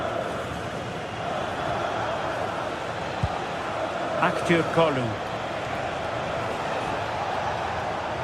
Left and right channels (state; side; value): identical; both; correlation 1.00